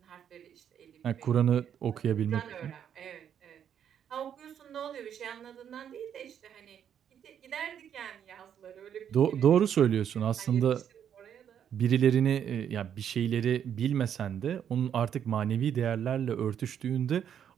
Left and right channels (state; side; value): quieter; left; 8.9 dB